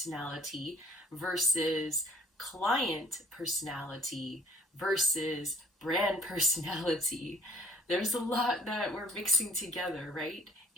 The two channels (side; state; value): both; normal; correlation 0.57